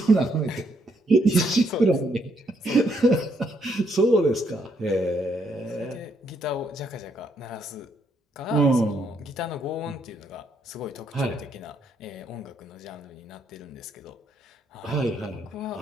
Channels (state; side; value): normal; both; correlation 0.73